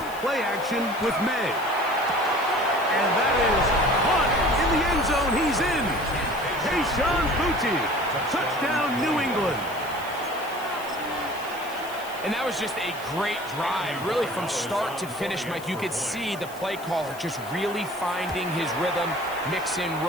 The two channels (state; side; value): noise; left; hiss, 18 dB below the sound